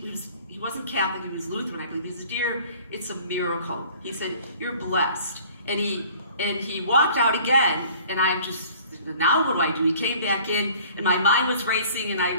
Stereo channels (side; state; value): both; inverted; correlation -0.50